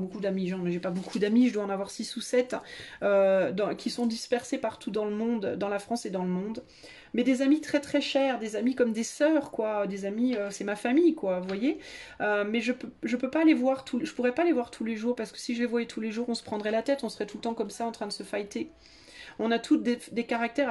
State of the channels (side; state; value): both; identical; correlation 1.00